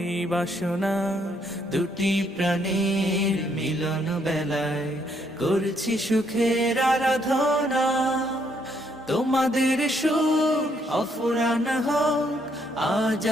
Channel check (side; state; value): both; normal; correlation 0.71